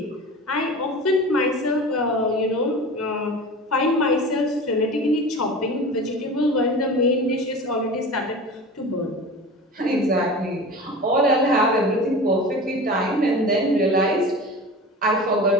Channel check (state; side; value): normal; both; correlation 0.34